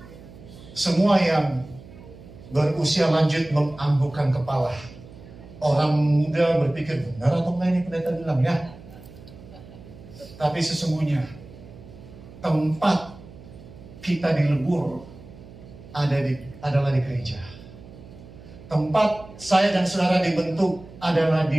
Semua yang berusia lanjut menganggukkan kepala. Orang muda berpikir, benar atau enggak ini pendeta bilang ya? Tapi sesungguhnya tempat kita dilebur adalah di gereja. Tempat saya dan saudara dibentuk adalah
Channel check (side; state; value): right; noise; hum, 18 dB below the sound